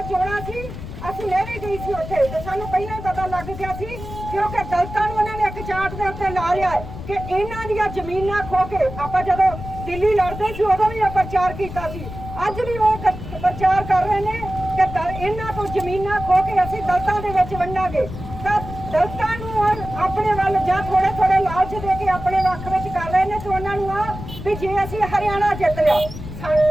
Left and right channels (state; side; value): noise; left; rumble, 10 dB below the sound